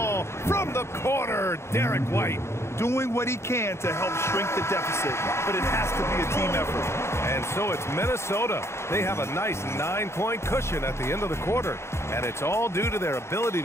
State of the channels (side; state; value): right; late; 0.13 ms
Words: from the corner. Derek White. Doing what he can to help shrink the deficit, but it has to be a team effort. And so it's Minnesota. They have a nice 9-point cushion at the end of the quarter. And it's all due to their ability